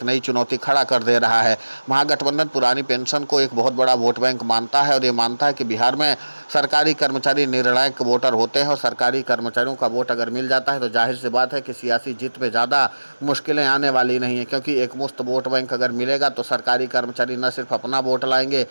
नई चुनौती खड़ा कर दे रहा है। महागठबंधन पुरानी पेंशन को एक बहुत बड़ा वोट बैंक मानता है और ये मानता है कि बिहार में सरकारी कर्मचारी निर्णायक वोटर होते हैं और सरकारी कर्मचारियों का वोट अगर मिल जाता है तो जाहिर सी बात है कि सियासी जीत में ज़्यादा मुश्किलें आने वाली नहीं है क्योंकि एक मुश्त वोट बैंक अगर मिलेगा तो सरकारी कर्मचारी न सिर्फ अपना वोट लाएंगे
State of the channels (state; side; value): inverted; both; correlation -1.00